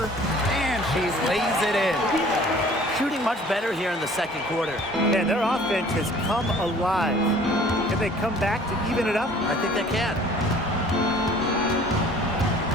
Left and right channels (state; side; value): normal; both; correlation 0.51